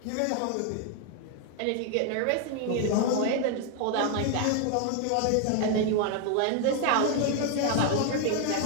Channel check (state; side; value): different; both; correlation 0.00